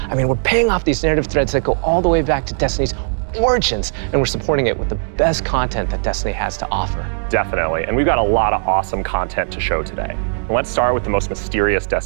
I mean, we're paying off these narrative threads that go all the way back to Destiny's origins, and we're supporting it with the best content that Destiny has to offer. Definitely, and we've got a lot of awesome content to show today. And let's start with the most mysterious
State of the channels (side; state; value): left; silent; digital silence